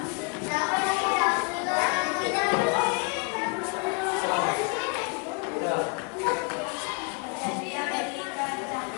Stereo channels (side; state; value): right; quieter; 35.9 dB